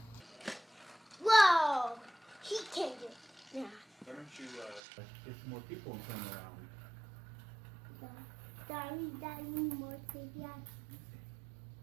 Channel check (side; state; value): left; drops out; at 4.8 s